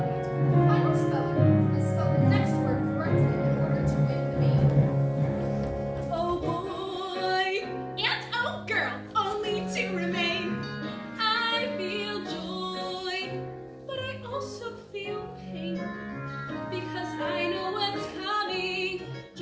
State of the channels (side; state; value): both; identical; correlation 1.00